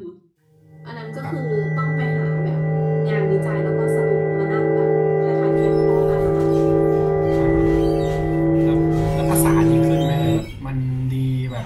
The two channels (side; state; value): both; identical; correlation 1.00